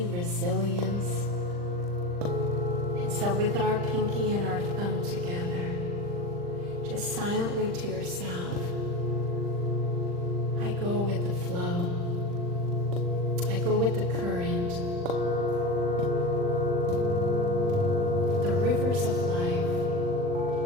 resilience. And so with our pinky and our thumb together, just silently to yourself, I go with the flow. I go with the current. The rivers of life.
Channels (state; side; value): late; left; 40 ms